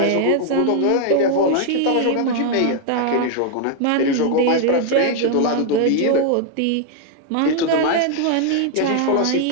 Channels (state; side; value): different; both; correlation 0.00